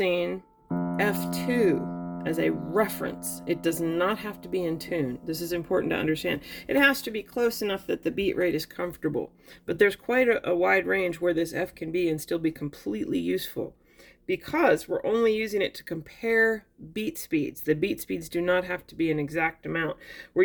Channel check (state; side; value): identical; both; correlation 1.00